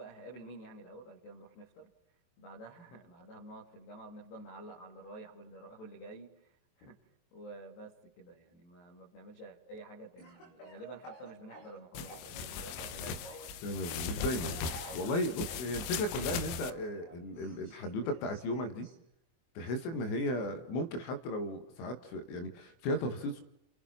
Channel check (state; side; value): late; right; 24 ms